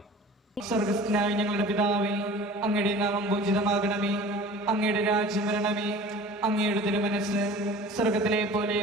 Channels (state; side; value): normal; both; correlation 0.42